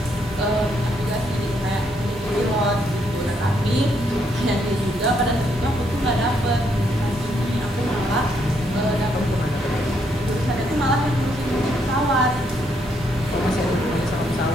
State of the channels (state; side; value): normal; both; correlation 0.74